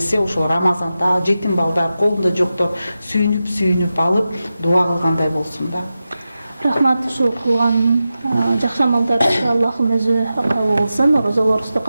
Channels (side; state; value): both; inverted; correlation -0.92